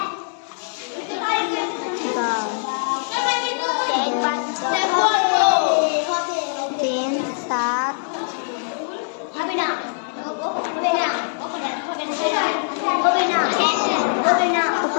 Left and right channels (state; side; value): silent; right; digital silence